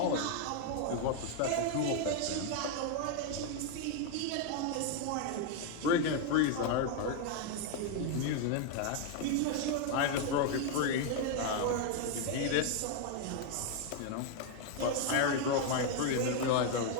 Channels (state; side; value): different; both; correlation 0.01